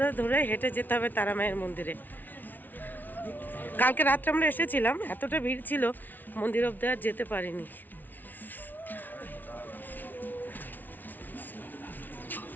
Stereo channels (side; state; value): right; late; 0.084 ms